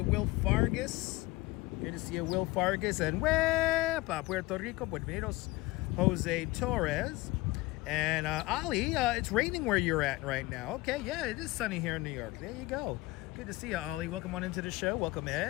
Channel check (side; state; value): right; quieter; 20.3 dB